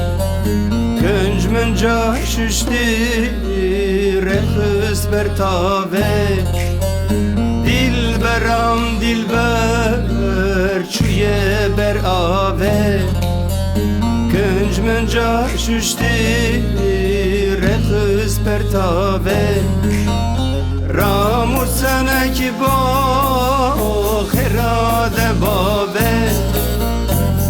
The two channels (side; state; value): both; identical; correlation 1.00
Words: گنج من جا ششتی رخص بر تاوه دلبرم دلبر چوی بر آوه گنج من جا ششتی رخص بر تاوه رامو سنک با خراد بابه